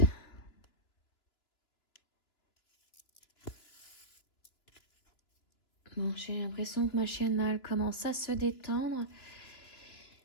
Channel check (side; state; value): right; late; 2.9 ms